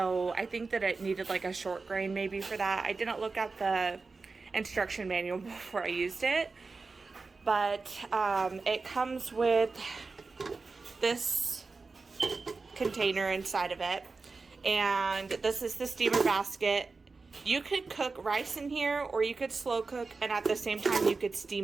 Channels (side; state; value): left; quieter; 4.1 dB